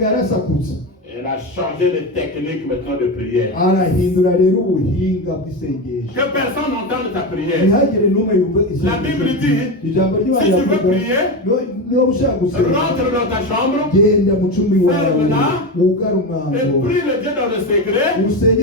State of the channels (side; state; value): both; normal; correlation 0.18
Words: yarasakutse. Elle a changé de technique maintenant de prière. Arahindura rero ubuhinga bw'isengesho. Que personne n'entende ta prière. Ntihagire n'umwe yumva isengesho. La Bible dit, ijambo ry'Imana si tu veux rivuga, prier, niba ushaka gusenga rentre dans ta chambre genda mu cumbi wawe ferme-la, wugare et umwango prie le Dieu dans le secret.